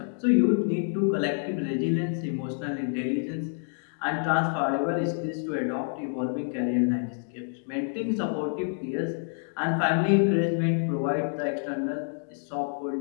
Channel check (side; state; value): right; silent; digital silence